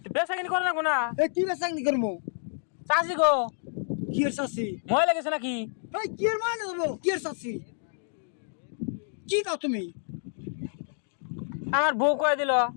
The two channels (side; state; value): right; silent; 59 dB below the other